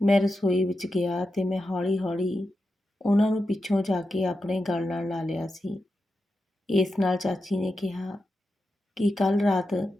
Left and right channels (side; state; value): both; normal; correlation 0.89